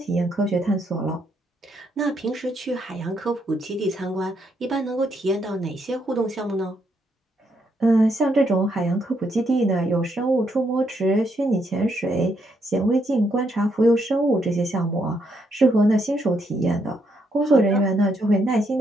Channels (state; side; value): normal; both; correlation 0.76